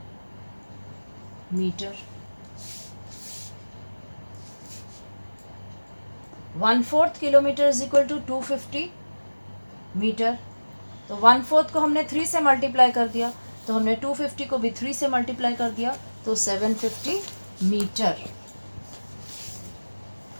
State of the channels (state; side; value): inverted; both; correlation -1.00